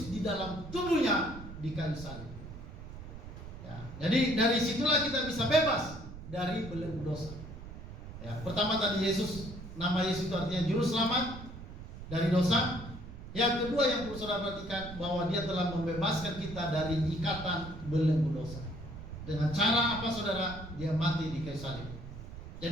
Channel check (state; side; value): noise; right; rumble, 12 dB below the sound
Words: di dalam tubuhnya di kayu salib. Ya, jadi dari situlah kita bisa bebas dari belenggu dosa. Ya, pertama tadi Yesus, nama Yesus itu artinya juru selamat dari dosa. Yang kedua yang perlu saudara perhatikan, bahwa Dia telah membebaskan kita dari ikatan belenggu dosa. Dengan cara apa, saudara? Dia mati di kayu salib.